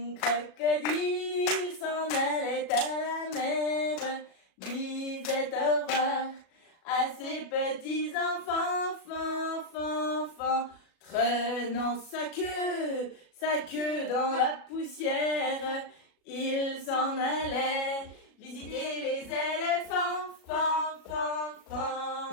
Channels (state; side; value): late; right; 37 ms